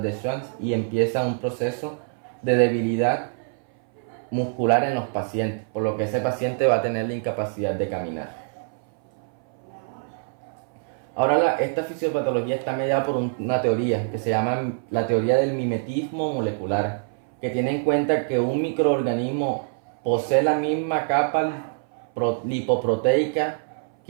de Schwann y empieza un proceso de debilidad muscular en los pacientes, por lo que ese paciente va a tener la incapacidad de caminar. Ahora esta fisiopatología está mediada por una teoría que se llama la teoría del mimetismo molecular, que tiene en cuenta que un microorganismo posee la misma capa lipoproteica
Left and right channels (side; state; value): left; silent; 59 dB below the other